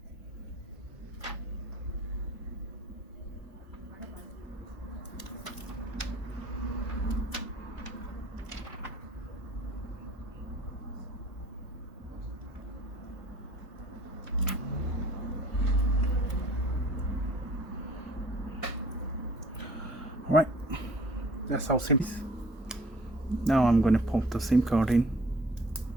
Alright, that's how simple. Now I'm going to pop the SIM card in.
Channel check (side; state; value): both; normal; correlation 0.52